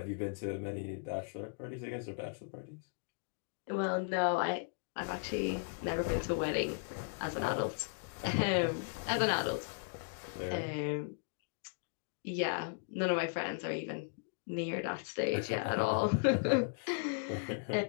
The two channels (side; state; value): right; silent; digital silence